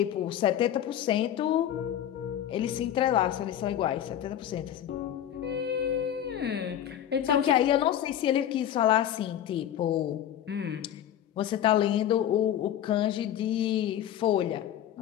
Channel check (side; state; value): right; quieter; 10.8 dB